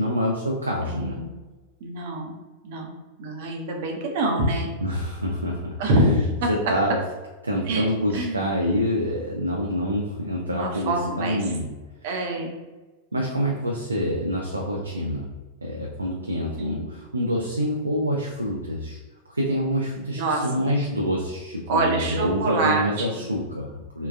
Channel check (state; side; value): inverted; both; correlation -0.40